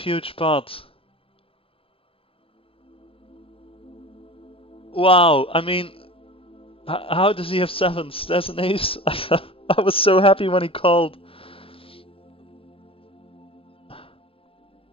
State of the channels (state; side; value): late; right; 0.27 ms